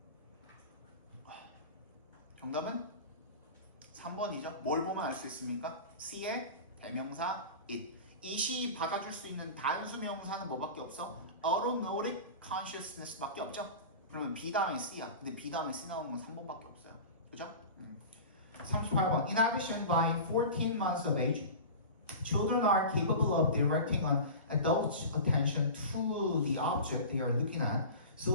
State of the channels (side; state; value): both; inverted; correlation -0.32